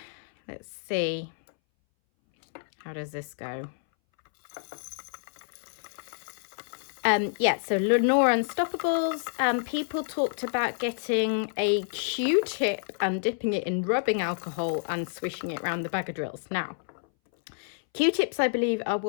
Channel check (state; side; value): silent; right; 59 dB below the other